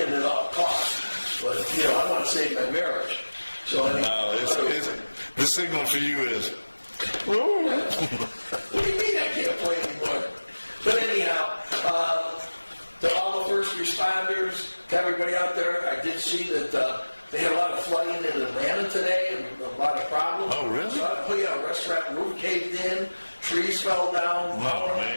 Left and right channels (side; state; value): both; inverted; correlation -1.00